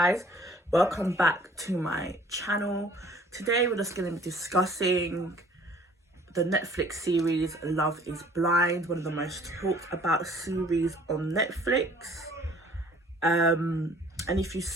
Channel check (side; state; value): both; normal; correlation 0.54